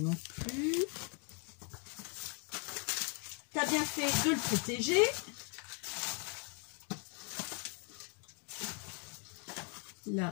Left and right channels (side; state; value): right; quieter; 37.7 dB